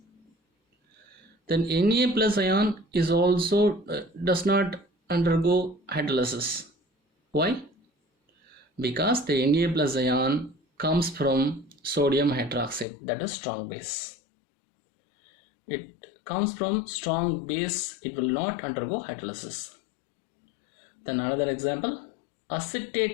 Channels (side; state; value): right; drops out; at 12.9 s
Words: Then Na plus ion is also does not undergo hydrolysis. Why? Because the Na plus ion comes from sodium hydroxide, that is strong base. It comes from strong base, it will not undergo hydrolysis. Then another example,